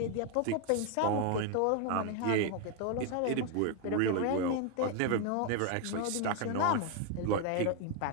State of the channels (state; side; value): different; both; correlation 0.01